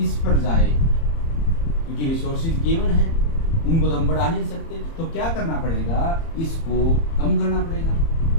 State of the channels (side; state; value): right; late; 30 ms